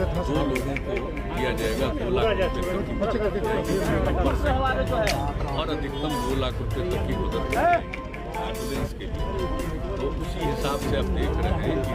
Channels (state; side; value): identical; both; correlation 1.00